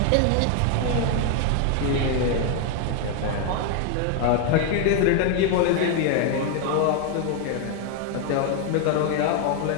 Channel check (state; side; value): different; both; correlation 0.01